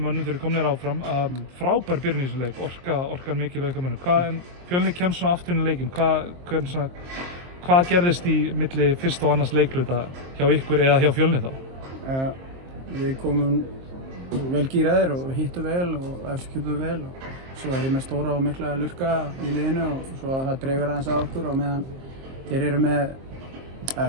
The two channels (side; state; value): left; late; 23 ms